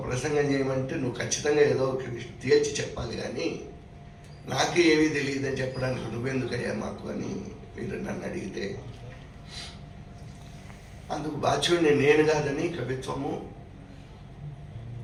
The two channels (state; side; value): identical; both; correlation 1.00